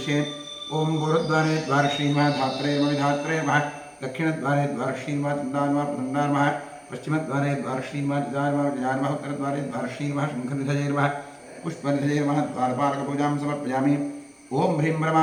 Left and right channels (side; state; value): both; identical; correlation 1.00